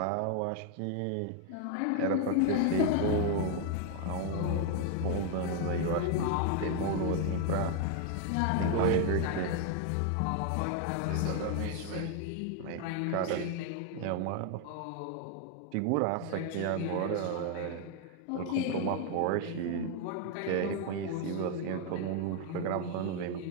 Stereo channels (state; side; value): different; both; correlation 0.01